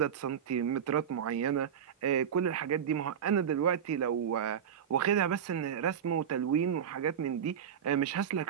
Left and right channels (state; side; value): quieter; left; 8.3 dB